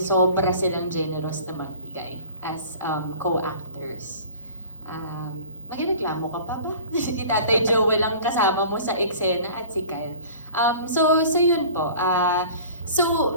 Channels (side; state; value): both; inverted; correlation -0.44